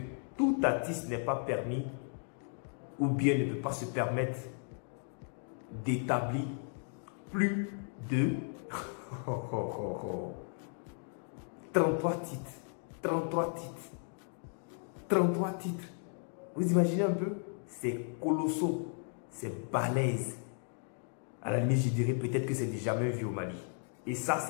tout artiste n'est pas permis ou bien ne peut pas se permettre d'établir plus de 33 titres. 33 titres. 33 titres. Vous imaginez un peu? C'est colossal. C'est balèze. À la limite, je dirais peut-être que c'est jamais vu au Mali. Et ça,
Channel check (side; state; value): right; silent; 54 dB below the other